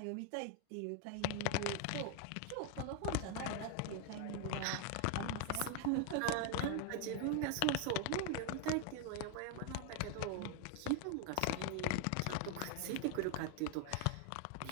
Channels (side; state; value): both; different; correlation 0.00